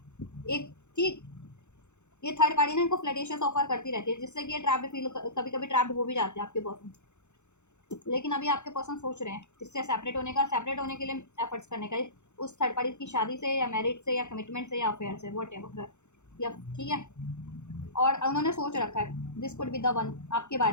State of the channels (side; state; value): right; late; 0.83 ms